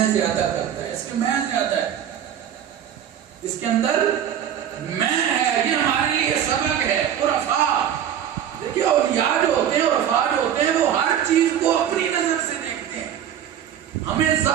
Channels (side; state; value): left; quieter; 9.7 dB